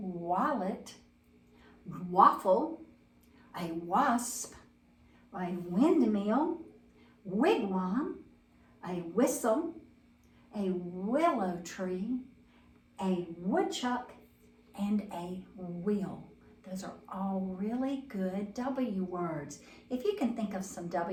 waffle, a wasp, a windmill, wigwam, a whistle, a willow tree, a woodchuck, and a wheel. Those are all really good W words. If you can think of some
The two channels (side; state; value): both; identical; correlation 1.00